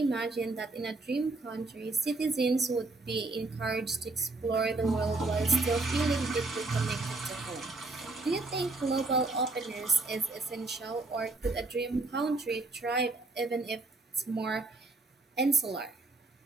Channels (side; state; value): left; quieter; 3.2 dB